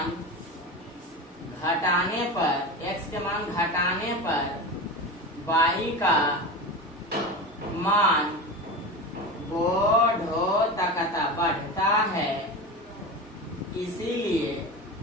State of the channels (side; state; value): both; normal; correlation 0.26